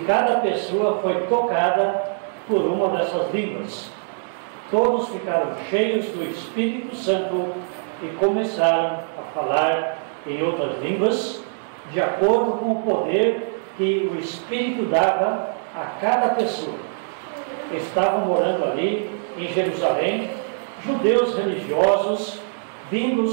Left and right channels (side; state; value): left; silent; digital silence